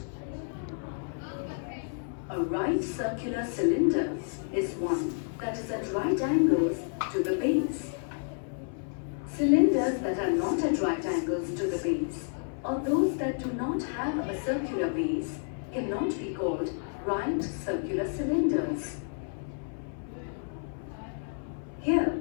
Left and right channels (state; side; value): silent; right; 57 dB below the other